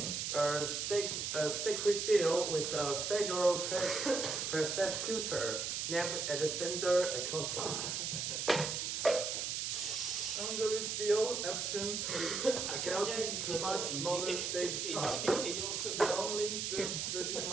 a secret deal with a federal prosecutor named Alexander Acosta. Under this deal, Epstein pleaded guilty to much smaller state charge. He only served 13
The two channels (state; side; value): noise; right; hiss, 1 dB below the sound